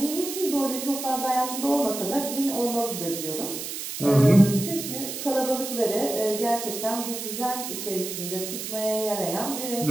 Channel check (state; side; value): noise; right; hiss, 6 dB below the sound